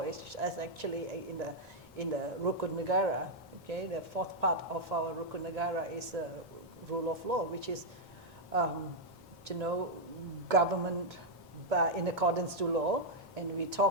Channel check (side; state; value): right; noise; rumble, 27 dB below the sound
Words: is actually in the Rukun Negara. Okay, the fourth part of our Rukun Negara is the rule of law, which is, you know, government in accordance to law, and we